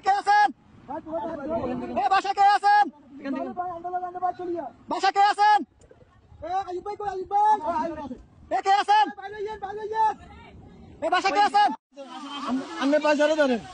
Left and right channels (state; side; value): identical; both; correlation 1.00